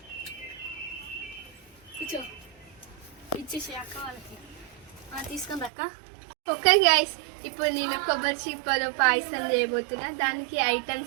ఇచ్చేసి అక్క వాళ్ళకి తీసుకుంది అక్క. ఓకే గైస్, ఇప్పుడు నేను కొబ్బరి చిప్పలో పాయసం చేయబోతున్నా. దానికి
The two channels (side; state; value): left; drops out; at 5.7 s